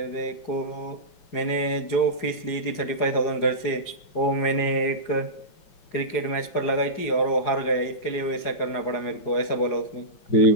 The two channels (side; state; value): right; late; 4.9 ms